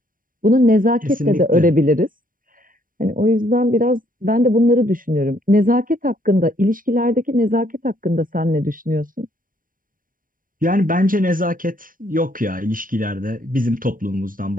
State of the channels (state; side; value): late; left; 0.40 ms